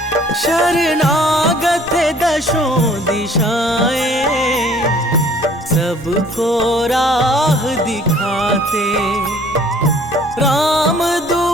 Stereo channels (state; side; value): normal; both; correlation 0.55